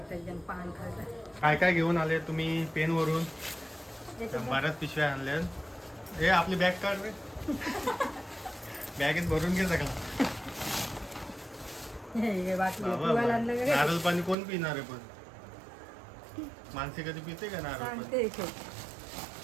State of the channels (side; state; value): left; drops out; at 14.4 s